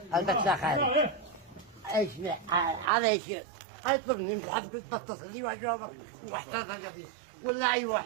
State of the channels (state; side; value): drops out; left; at 2.9 s